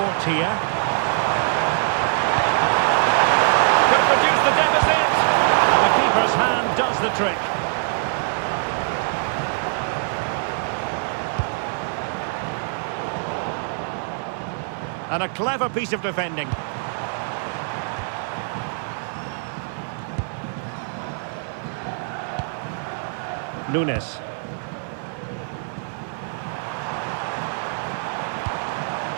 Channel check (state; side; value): silent; left; 63 dB below the other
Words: here. Could be hat-trick. And a clever piece of defending. Nunes.